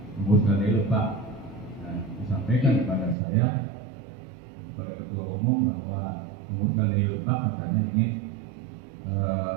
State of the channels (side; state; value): left; drops out; at 3.2 s